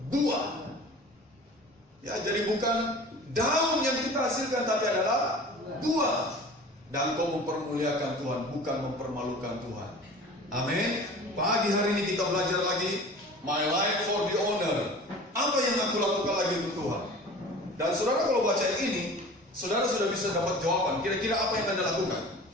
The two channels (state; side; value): normal; both; correlation 0.41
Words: buah. Ya, jadi bukan daun yang kita hasilkan, tapi adalah buah. Dan kau mempermuliakan Tuhan, bukan mempermalukan Tuhan. Amin. Pagi hari ini kita belajar lagi my life for the honor. Apa yang aku lakukan lagi untuk Tuhan? Dan saudara kalau baca ini, saudara sudah bisa dapat jawaban. Kira-kira apa yang Anda lakukan